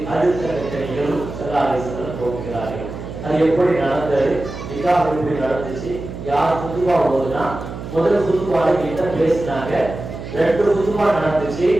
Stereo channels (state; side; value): noise; right; hum, 10 dB below the sound